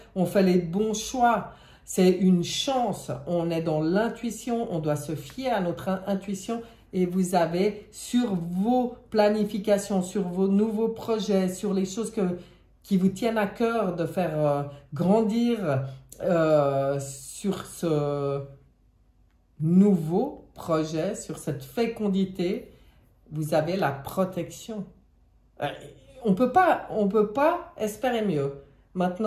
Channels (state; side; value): identical; both; correlation 1.00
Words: on fait les bons choix. C'est une chance, on est dans l'intuition, on doit se fier à notre intuition. Et vous avez sur vos planifications, sur vos nouveaux projets, sur les choses qui vous tiennent à cœur de faire grandir sur ce nouveau projet, sur cette fécondité, vous avez la protection. On peut pas espérer mieux.